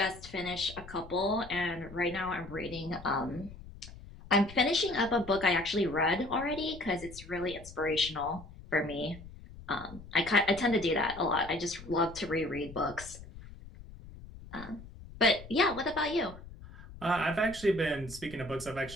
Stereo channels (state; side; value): noise; left; rumble, 16 dB below the sound